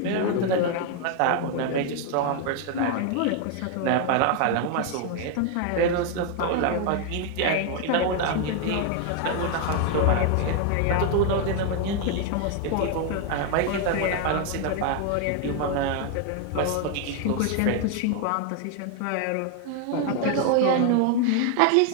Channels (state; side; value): different; both; correlation 0.01